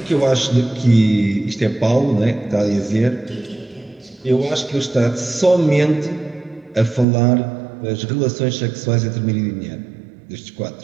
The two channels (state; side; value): drops out; left; at 7.1 s